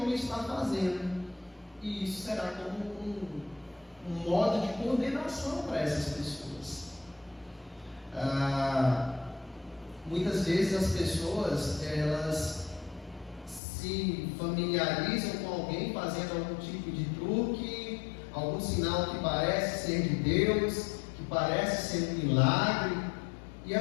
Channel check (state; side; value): drops out; right; at 13.6 s